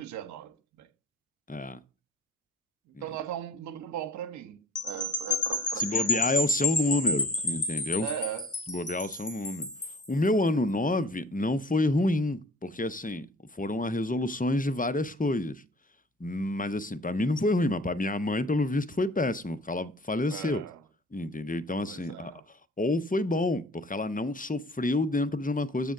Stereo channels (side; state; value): both; normal; correlation 0.49